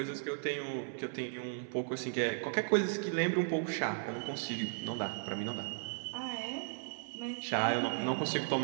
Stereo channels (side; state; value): left; silent; 54 dB below the other